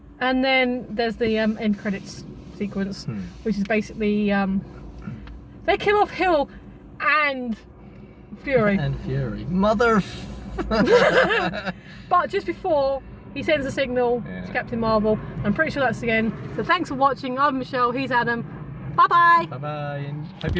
And then there's the end credits sequence, which is basically they kill off Hill and Fury. And Fury. Mother. But just before he sends a signal to Captain Marvel, I'm pretty sure that's the end. So thanks for watching. I'm Michelle. He's Adam. Bye bye. Bye bye. And hope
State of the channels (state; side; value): identical; both; correlation 1.00